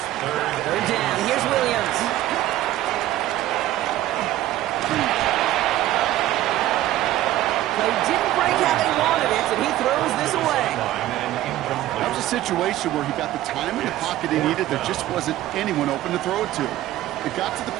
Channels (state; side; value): quieter; left; 14.5 dB